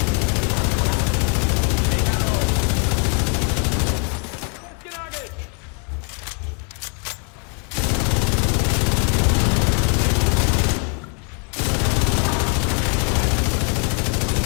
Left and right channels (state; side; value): quieter; right; 38.7 dB